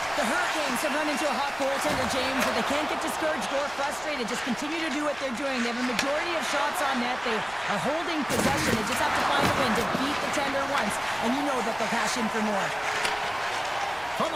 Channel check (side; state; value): right; noise; rumble, 22 dB below the sound